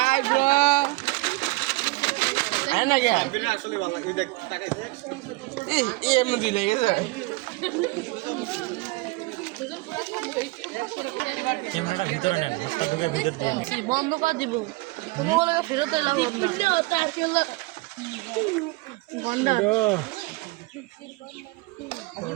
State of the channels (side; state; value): left; quieter; 23.2 dB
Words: bro আয় না কে এই এমনি দিলে গেছে ক্যামেরাটা ভিতরে নেন, হাতটা ঢুকে ভিতর দিয়ে বন্ধ করে দিব কোনো বলে ফেরত এলাম আমরা